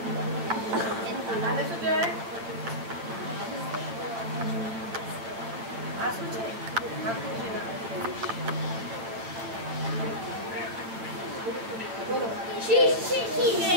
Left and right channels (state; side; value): late; left; 8.7 ms